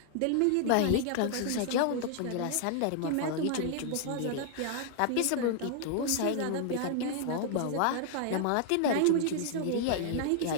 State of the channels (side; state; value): both; different; correlation 0.00